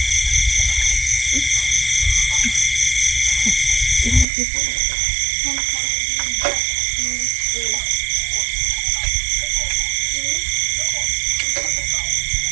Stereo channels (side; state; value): left; drops out; at 4.2 s